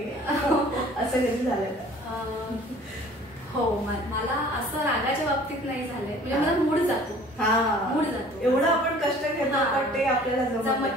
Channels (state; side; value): normal; both; correlation 0.50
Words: असं कधी झालंय का? हो, मला असं रागाच्या बाबतीत नाही झालंय. म्हणजे मला मूड जातो, एवढं आपण कष्ट घेतो पण ते आपल्याला